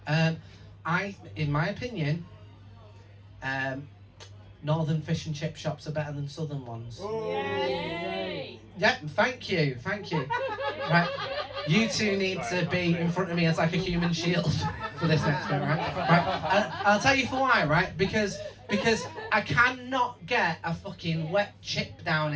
In my opinion, northern fish and chip shops are better than southern ones. Yay! Yeah, thank you. Right? You two need to be in front of me as like a human shield for this next bit, right? I'll tell you for why, right? Because I cannot get a fucking wet chip down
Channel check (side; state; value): both; identical; correlation 1.00